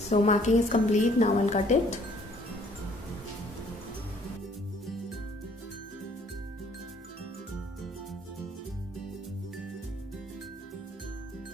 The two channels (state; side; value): normal; both; correlation 0.60